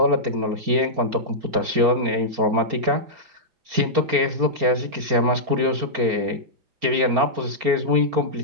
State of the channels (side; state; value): left; late; 4.4 ms